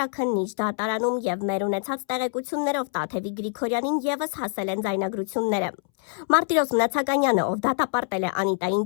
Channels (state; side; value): silent; right; 62 dB below the other